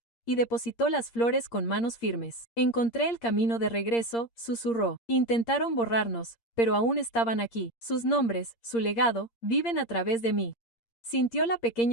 y depositó las flores con manos firmes. Encontré el camino de regreso, susurró. Intentaron borrarnos, pero aún estaban aquí. Sus nombres, su legado, viven a través de mí. Sintió la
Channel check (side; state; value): right; late; 8.7 ms